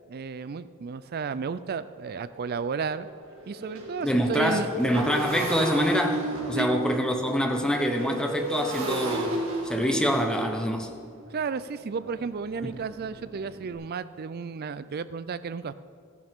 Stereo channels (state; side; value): normal; both; correlation 0.56